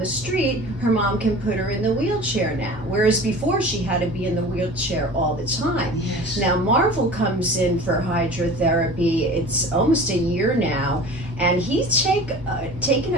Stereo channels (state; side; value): normal; both; correlation 0.40